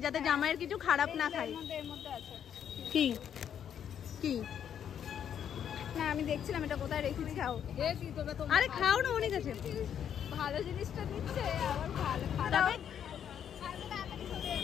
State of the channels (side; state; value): right; quieter; 8.9 dB